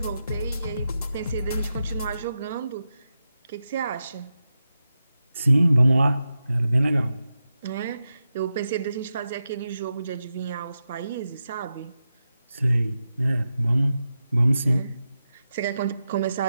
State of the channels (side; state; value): both; inverted; correlation -0.89